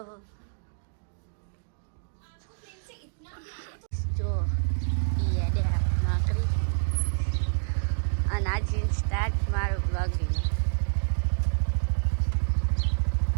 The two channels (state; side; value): silent; left; digital silence